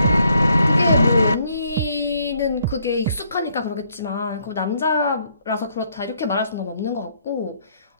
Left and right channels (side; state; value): both; inverted; correlation -0.70